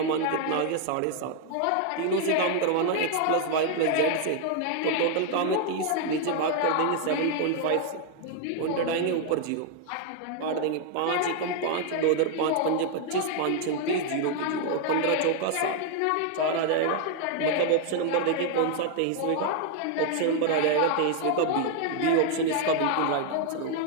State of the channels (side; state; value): both; different; correlation 0.00